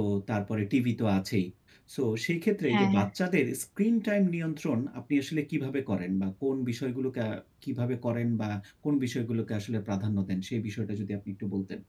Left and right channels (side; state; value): both; identical; correlation 1.00